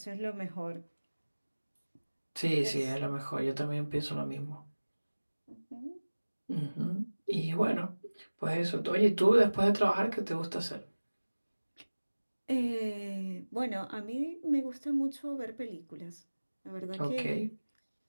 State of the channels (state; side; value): inverted; both; correlation -1.00